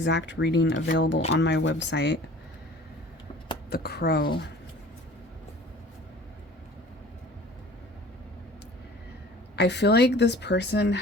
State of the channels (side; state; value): both; normal; correlation 0.46